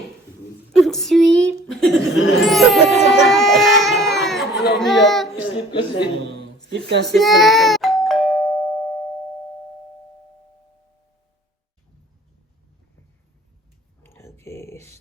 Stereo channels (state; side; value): normal; both; correlation 0.50